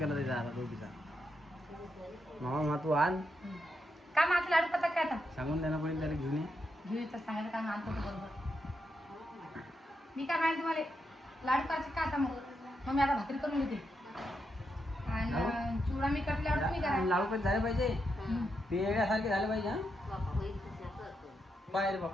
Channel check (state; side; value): normal; both; correlation 0.83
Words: केला त्याचा आता दोघीचा. मामा तू आण काय मग आता लाडू पता काय आता सांगून देणं पडेल त्याला घेऊन ये. घेऊ तर सांगायचं काय आणतो तो बरोबर. मी काय माहिती तुम्हाला लाडू करायचे का आता मग मी आता भाकरी करून घेते आणि चिवडा मी करते लाडू तुम्ही करा. लाडू पण झाले पाहिजे ते येण्यासारखे झाले पाहिजे. हा बापा होईल तसं करतो. पाहिजे